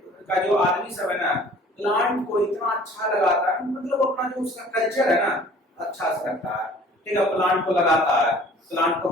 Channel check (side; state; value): both; normal; correlation 0.51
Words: का जो आदमी सब है ना प्लांट को इतना अच्छा लगाता है मतलब अपना जो उसका कल्चर है ना अच्छा से रखता है ठीक है। प्लांट को लगाता है, प्लांट को